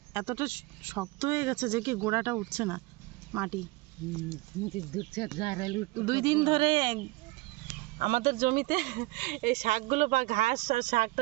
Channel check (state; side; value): quieter; left; 22.6 dB